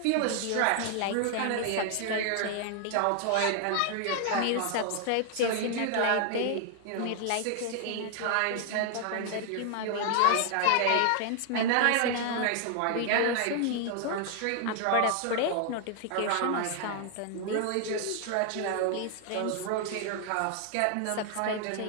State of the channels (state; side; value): different; both; correlation 0.00